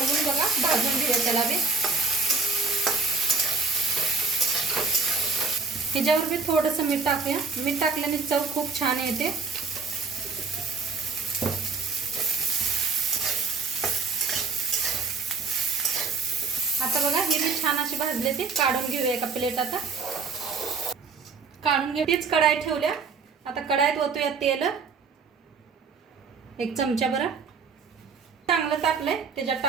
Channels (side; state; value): left; quieter; 4.7 dB